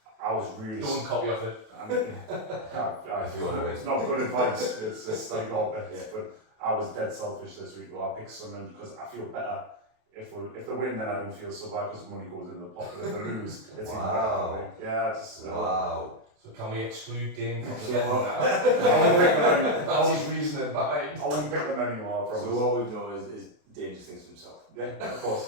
I was really. Don't copy off it. If you want to win. It's not good advice. It's just like all bets. But I was dead selfish this week. Well, I picked Sunderland because I feel better. If they win, then I don't feel so bad because the money goes in the pocket. If they lose, it's even better. Yeah, just. Wow. So can we exclude Dane from the So- bet now? I won't pick them anymore. That was his reasoning behind. I won't pick them anymore. I promise. so what we've done is Dangerous things to himself. Yeah, of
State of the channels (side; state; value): left; late; 28 ms